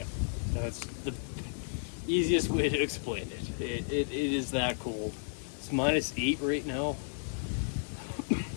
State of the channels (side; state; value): right; silent; digital silence